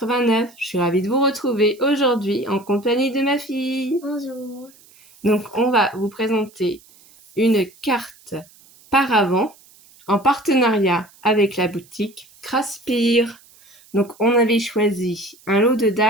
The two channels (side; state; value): right; noise; hiss, 27 dB below the sound